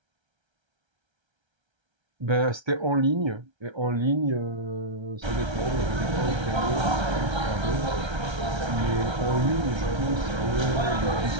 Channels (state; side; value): late; left; 1.3 ms